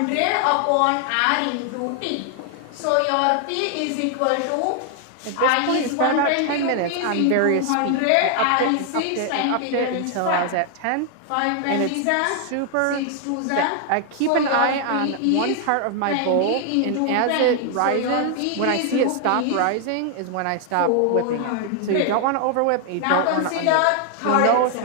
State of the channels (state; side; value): different; both; correlation 0.00